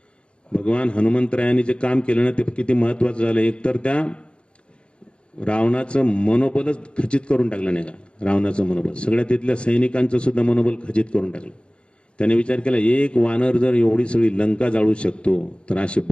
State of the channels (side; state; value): right; late; 0.056 ms